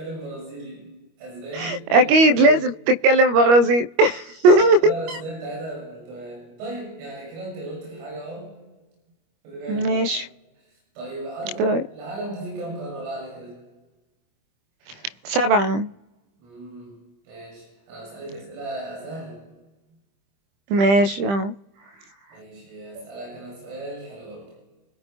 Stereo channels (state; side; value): late; left; 25 ms